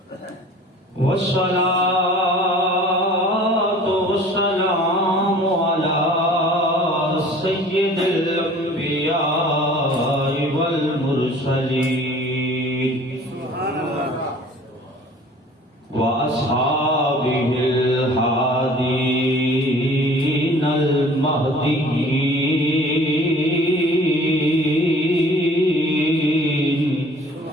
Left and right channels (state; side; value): normal; both; correlation 0.48